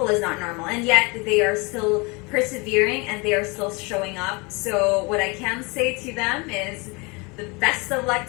is not normal, and yet they are still persevering and they are still showing up. So what I can say to them is the best of luck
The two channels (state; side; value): quieter; right; 28.3 dB